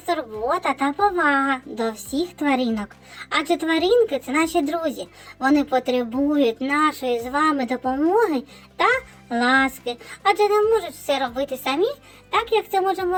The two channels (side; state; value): both; identical; correlation 1.00